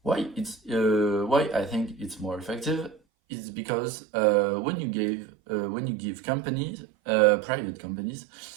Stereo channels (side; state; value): left; drops out; at 3.0 s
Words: Why I think it's more effective is because when you give companies, private companies,